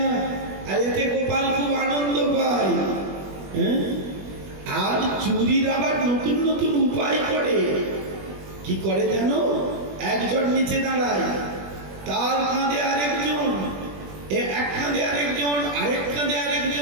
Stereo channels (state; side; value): late; left; 21 ms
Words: আর এতে গোপাল খুব আনন্দ পায়। আর চুরির আবার নতুন নতুন উপায় করে। কি করে জানো? একজন নিচে দাঁড়ায়, তার কাঁধে আরেকজন, এক কাঁধে আরেকজন, আরেক কাঁধে